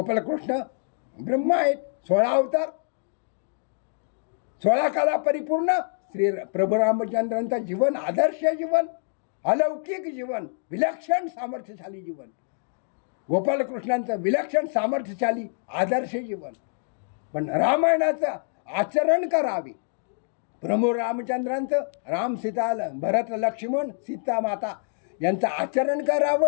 ब्रह्म आहेत, 16 अवतार, 16 कला परिपूर्ण श्री प्रभू रामचंद्रांचं जीवन आदर्श जीवन, अलौकिक जीवन, विलक्षण सामर्थ्यशाली जीवन. गोपालकृष्णांचं विलक्षण सामर्थ्यशाली आदर्श जीवन. पण रामायणाचं आचरण करावे. प्रभू रामचंद्रांचं राम सीता भरत लक्ष्मण सीता माता यांचं आचरण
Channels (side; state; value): right; silent; digital silence